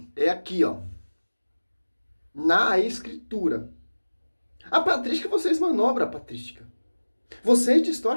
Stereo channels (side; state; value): both; inverted; correlation -1.00